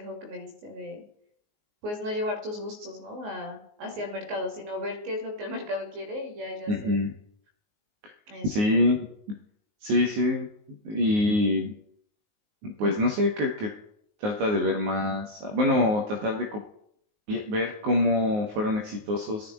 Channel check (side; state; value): left; late; 19 ms